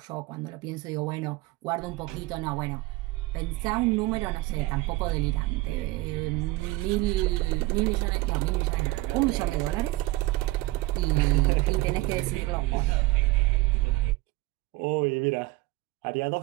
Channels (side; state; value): left; quieter; 19.9 dB